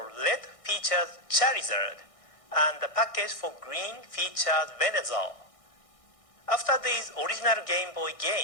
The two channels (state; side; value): late; right; 1.6 ms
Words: Red featured Charizard, and the package for Green featured Venusaur. After these original Game Boy